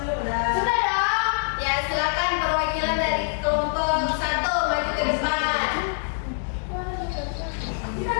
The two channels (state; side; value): silent; right; 62 dB below the other